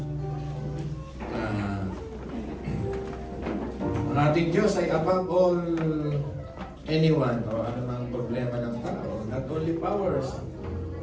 Ang ating Diyos ay above all anyone o anumang problema ng tao. Not only powers,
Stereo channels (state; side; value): identical; both; correlation 1.00